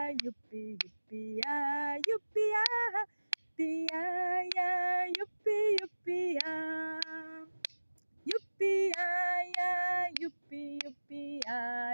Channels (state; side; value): inverted; both; correlation -1.00